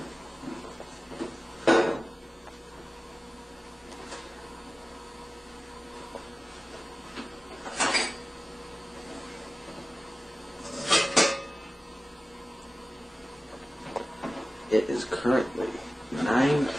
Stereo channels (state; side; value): normal; both; correlation 0.97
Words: It is currently